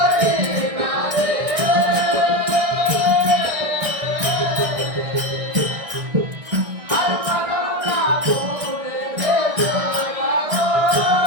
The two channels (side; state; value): left; late; 1.6 ms